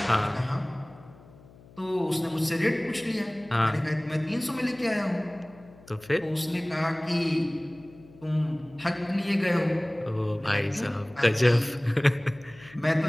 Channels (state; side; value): noise; left; hum, 23 dB below the sound